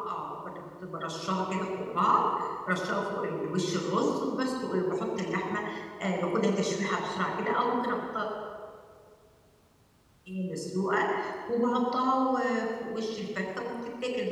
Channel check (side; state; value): both; identical; correlation 1.00